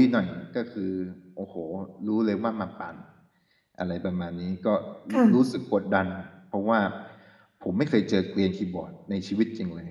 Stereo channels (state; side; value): identical; both; correlation 1.00